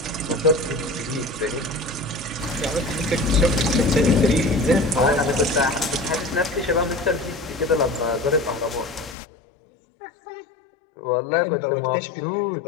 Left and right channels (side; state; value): right; drops out; at 9.2 s